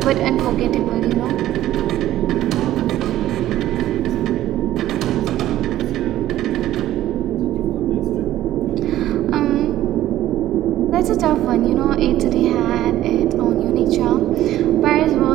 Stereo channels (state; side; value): quieter; left; 13.7 dB